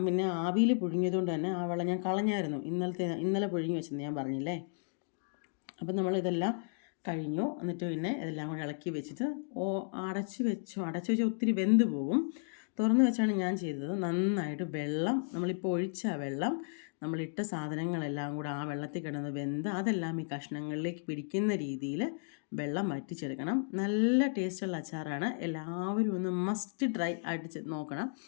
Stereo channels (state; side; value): silent; right; digital silence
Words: പിന്നെ ആവിയിൽ പുഴുങ്ങിയതുകൊണ്ട് തന്നെ ആ വെള്ളം ഞാൻ കളഞ്ഞായിരുന്നു. ഇന്നലെ പുഴുങ്ങി വെച്ചെന്ന് ഞാൻ പറഞ്ഞില്ലേ. അപ്പം നമ്മളിതെല്ലാം കഴിഞ്ഞു. എന്നിട്ട് പിന്നെ ഇതെല്ലാം കൂടെ ഇളക്കി വെച്ചിട്ട് അടച്ച് വെച്ചാൽ ഒത്തിരി വെന്ത് പോകും. തുറന്ന് വെച്ചാണ് ഞാൻ ചെയ്തത്. നന്നായിട്ട് വെള്ളം, നമ്മളിപ്പോൾ ഒഴിച്ച വെള്ളം, നമ്മളിട്ട സാധനങ്ങളെല്ലാം കൂടെ ആ വെള്ളത്തിൽ കിടന്ന് വെന്ത് അതെല്ലാം ഈ കഷ്ണങ്ങളിലേക്ക് പിടിക്കുന്ന രീതിയിൽ വെള്ളം വറ്റിച്ചെടുക്കണം. നല്ല ടേസ്റ്റുള്ള അച്ചാറാണ്. എല്ലാവരും ഒന്ന് മസ്റ്റ് ട്രൈ ആയിട്ട് നോക്കണം.